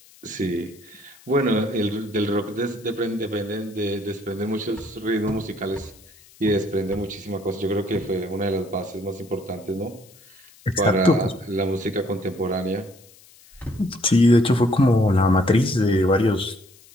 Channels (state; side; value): noise; left; hiss, 26 dB below the sound